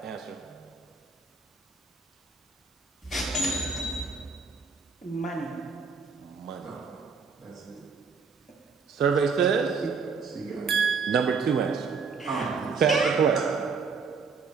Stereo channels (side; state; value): left; quieter; 5.1 dB